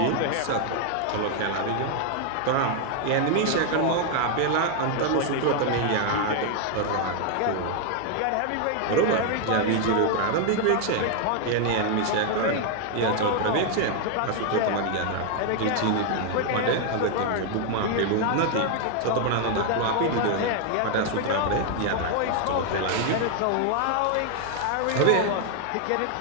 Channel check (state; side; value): different; both; correlation 0.00